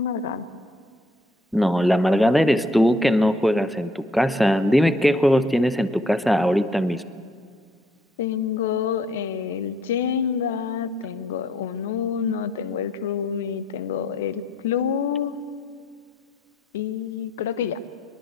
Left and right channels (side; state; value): both; normal; correlation 0.67